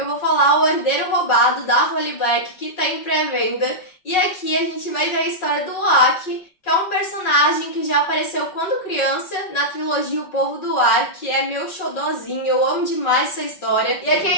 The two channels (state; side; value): late; right; 5.4 ms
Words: vou falar O Herdeiro Roubado, da Holly Black, que tá em pré-venda. E aqui a gente vai ver a história do Oak, que é um personagem que já apareceu quando criança na trilogia O Povo do Ar, que é meu xodózinho, eu amo demais essa história. E aqui a